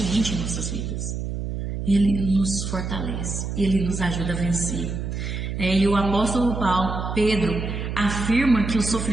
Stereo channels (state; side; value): noise; right; hum, 4 dB below the sound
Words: em nossas vidas. Ele nos fortalece, Ele nos ajuda a vencer. E o apóstolo Pedro afirma que os